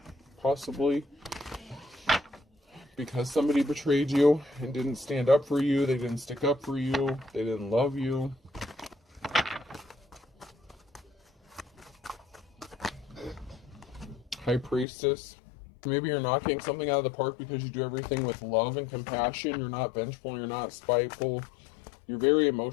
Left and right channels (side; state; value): right; drops out; at 14.9 s